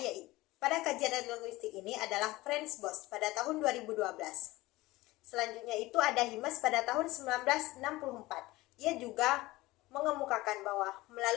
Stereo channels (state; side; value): quieter; right; 19.4 dB